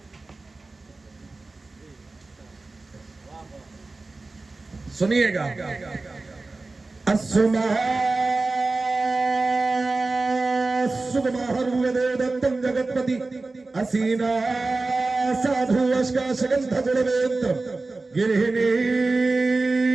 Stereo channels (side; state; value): left; quieter; 3.5 dB